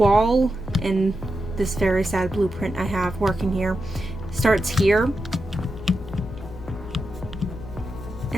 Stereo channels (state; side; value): noise; left; hum, 14 dB below the sound